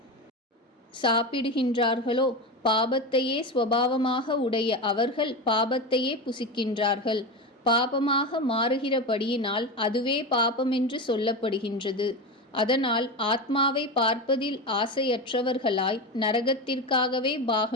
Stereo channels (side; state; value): both; normal; correlation 0.20